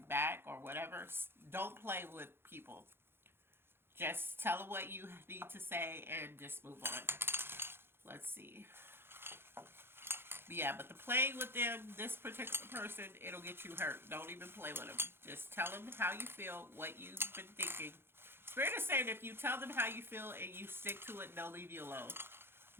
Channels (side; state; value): left; late; 0.11 ms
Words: back or whatever, don't play with people. Just tell them what you need to say and just move on. Let's see. Yeah, but the playing with them, this particular person, it'll get you hurt. Don't even play with them. Just tell them how you feel, what you've been thinking. Spirit is saying if you tell them how you feel and you stick to it, they'll leave you alone.